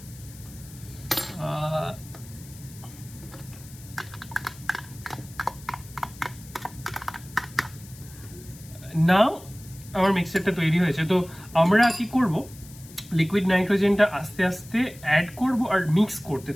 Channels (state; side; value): noise; left; hiss, 20 dB below the sound